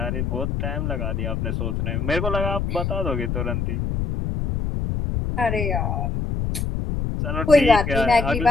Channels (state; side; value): noise; left; rumble, 1 dB below the sound